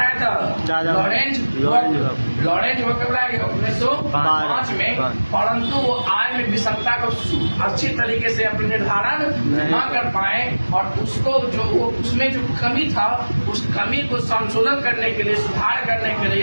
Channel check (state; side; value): inverted; both; correlation -1.00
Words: था, लॉरेंज वक्र लाया गया 1905 में। परंतु वो आय में विषमता को अच्छी तरीके से अपने निर्धारण न कर पाए, और उसको जो उसमें जो कमी था उस कमी को संशोधन करने के लिए, सुधार करने के